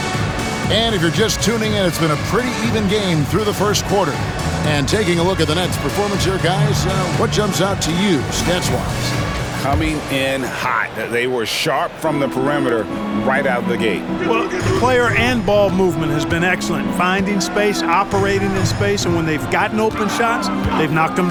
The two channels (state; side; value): identical; both; correlation 1.00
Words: And if you're just tuning in, it's been a pretty even game through the first quarter. And taking a look at the Nets' performance here, guys, what jumps out to you, stats-wise? Coming in hot. They were sharp from the perimeter right out of the gate. Well, player and ball movement has been excellent. Finding space, operating in space, and when they've gotten open shots, they've knocked them